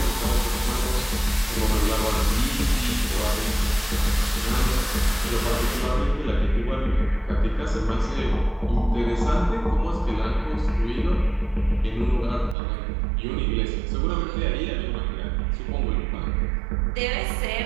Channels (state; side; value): drops out; left; at 12.6 s